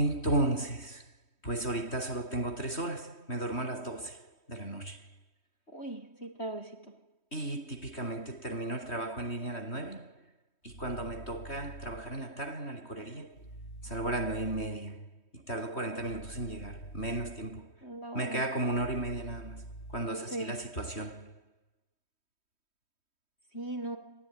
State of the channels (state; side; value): late; right; 3.1 ms